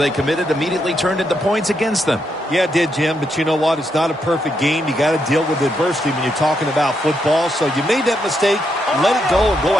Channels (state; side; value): normal; both; correlation 0.80